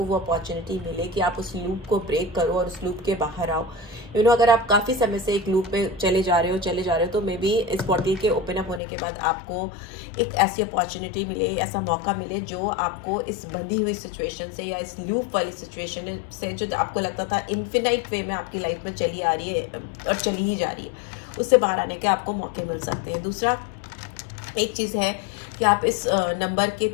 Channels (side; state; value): right; drops out; at 8.8 s